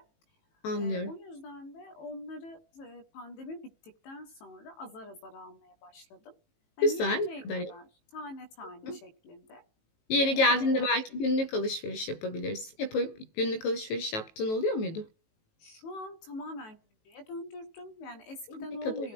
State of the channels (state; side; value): late; right; 18 ms